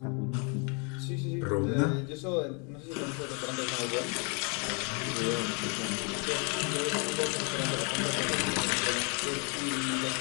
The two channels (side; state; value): right; quieter; 35.7 dB